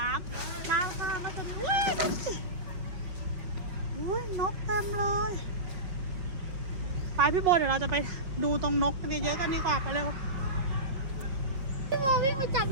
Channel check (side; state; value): left; late; 5.4 ms